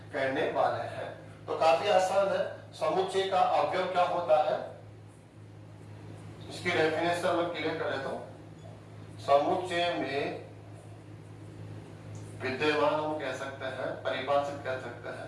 कहने वाले हैं। तो काफी आसान है, समुच्चय का अवयव क्या होता है, इसकी डेफिनेशन में क्लियर कर देता हूं। समुच्चय में विद्यमान हम कह सकते हैं, परिभाषित कह सकते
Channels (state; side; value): identical; both; correlation 1.00